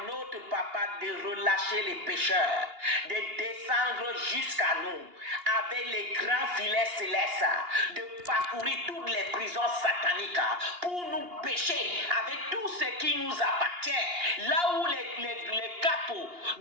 notre papa de relâcher les pêcheurs, de descendre jusqu'à nous avec les grands filets célestes, de parcourir toutes les prisons sataniques pour nous pêcher avec tout ce qui nous appartient. Là où les capots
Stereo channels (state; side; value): late; left; 2.8 ms